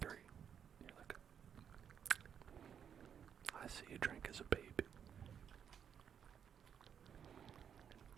And you're like, I see you drank as a baby.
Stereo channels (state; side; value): quieter; left; 8.1 dB